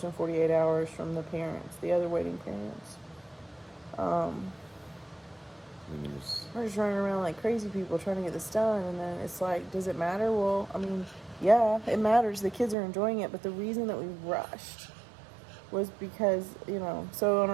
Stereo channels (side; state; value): left; drops out; at 12.8 s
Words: in 48 hours from the parents, the other waiting parents. We're just running around like crazy people trying to get this done. And then it's like, does it matter? Well, yeah, it matters. The kids are enjoying it. But the reason that we rushed was because, so I